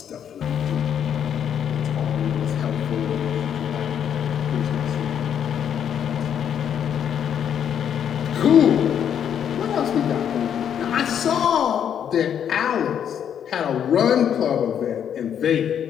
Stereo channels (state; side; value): quieter; right; 8.8 dB